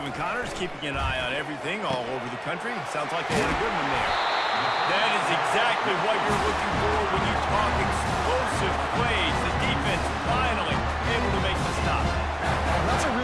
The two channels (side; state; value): both; identical; correlation 1.00